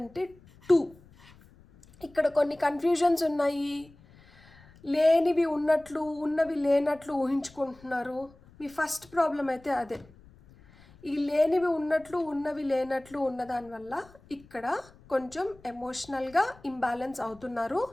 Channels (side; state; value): left; noise; rumble, 25 dB below the sound